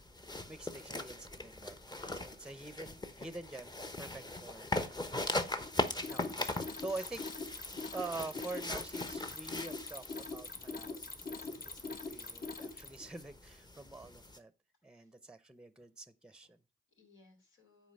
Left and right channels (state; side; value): normal; both; correlation 0.42